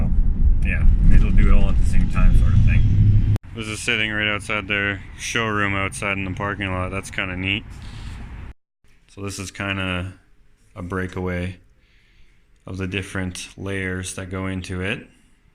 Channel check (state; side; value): identical; both; correlation 1.00